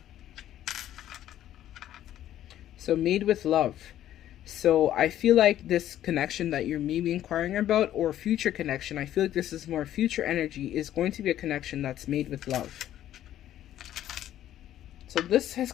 So made with love. So I feel like this connection that you're maybe inquiring about, or future connection, I feel like this is more future energy, is going to be a connection that's made with love. So this has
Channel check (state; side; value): quieter; right; 12.1 dB